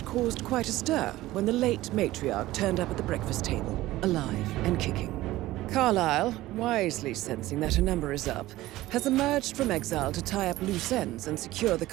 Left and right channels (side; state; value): left; quieter; 16.8 dB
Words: caused quite a stir when the late matriarch turned up at the breakfast table, alive and kicking. Carlisle, wisely sensing that her number is up, has emerged from exile to tie up loose ends and secure the